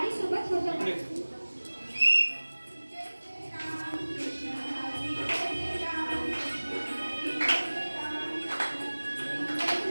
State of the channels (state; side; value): inverted; both; correlation -1.00